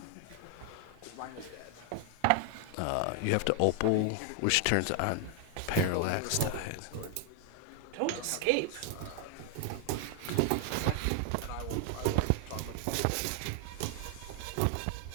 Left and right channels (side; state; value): both; different; correlation 0.00